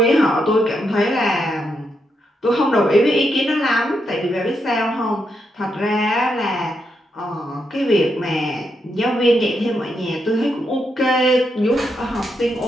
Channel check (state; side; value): normal; both; correlation 0.81